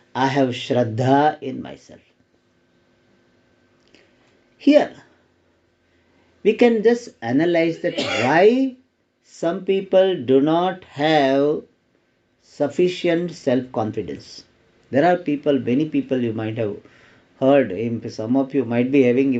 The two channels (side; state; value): both; identical; correlation 1.00